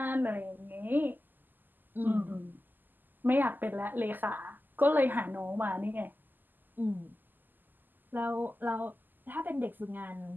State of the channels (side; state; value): left; late; 0.088 ms